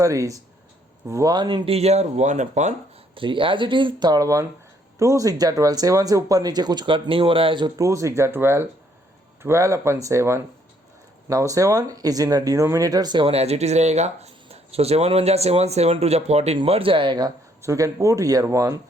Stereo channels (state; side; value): normal; both; correlation 0.67